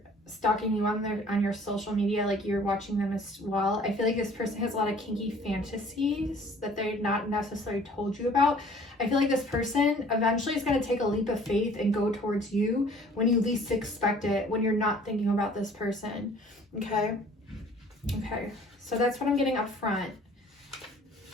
stalking you on your social media, like you're watching them as well. I feel like this person has a lot of kinky fantasies that they're not necessarily told you about. I feel like this person eventually is going to take a leap of faith and go towards you when you least expect it, when you're not thinking about this person. Okay, so that's what I'm getting up front.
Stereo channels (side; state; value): both; normal; correlation 0.53